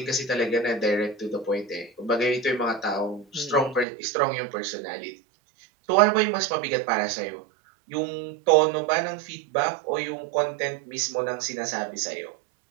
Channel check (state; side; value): drops out; left; at 3.9 s